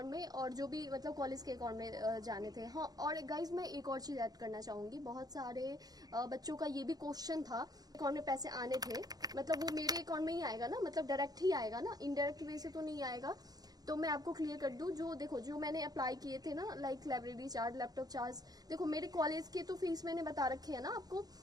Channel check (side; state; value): left; late; 0.19 ms